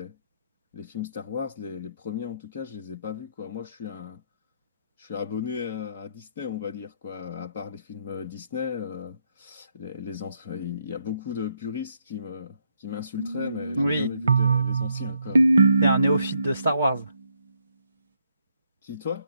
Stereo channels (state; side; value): inverted; both; correlation -0.75